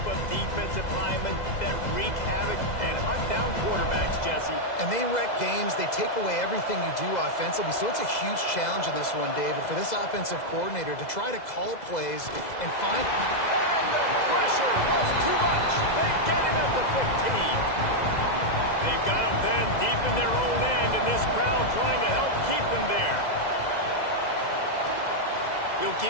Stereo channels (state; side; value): late; right; 2.0 ms